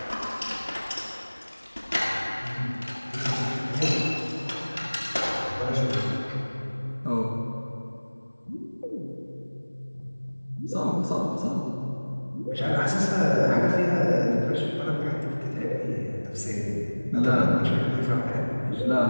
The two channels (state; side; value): inverted; both; correlation -1.00